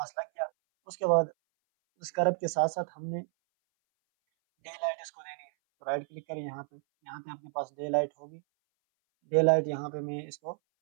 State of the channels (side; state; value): left; silent; 57 dB below the other